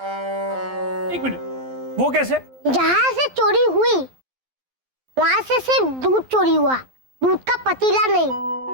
एक मिनट, वो कैसे? जहाँ से चोरी हुई वहाँ से सिर्फ दूध चोरी हुआ, दूध का पतीला नहीं,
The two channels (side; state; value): left; late; 12 ms